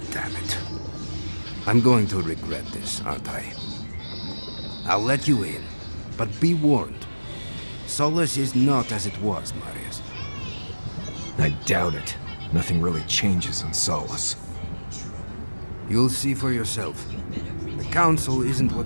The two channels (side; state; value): both; inverted; correlation -1.00